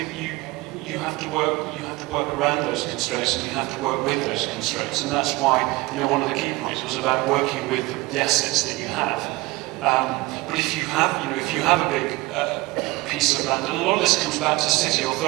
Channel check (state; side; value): quieter; left; 21.9 dB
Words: you have to work around those constraints, and you have to work with those constraints, and that's why, you know, one of the key points was about working with the assets that you have. But if you have a big piece of land, and a lot of this comes back to city